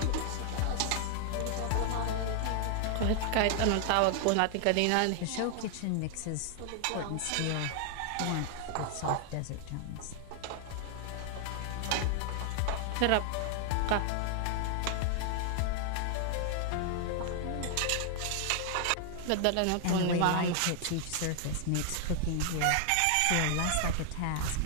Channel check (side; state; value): both; different; correlation 0.00